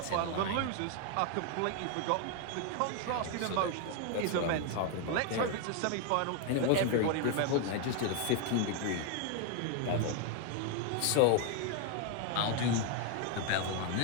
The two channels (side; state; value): both; different; correlation 0.01